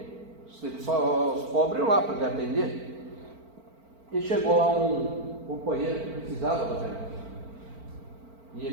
Só os pobres lá para ele atender. E chegou lá um companheiro que precisava do remédio. E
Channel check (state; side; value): late; left; 4.4 ms